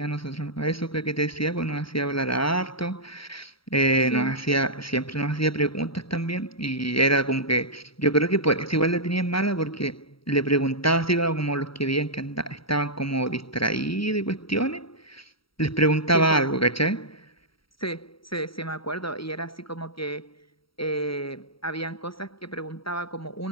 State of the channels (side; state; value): right; late; 0.75 ms